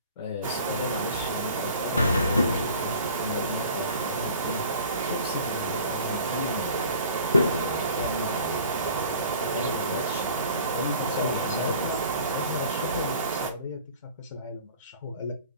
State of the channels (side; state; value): both; inverted; correlation -0.46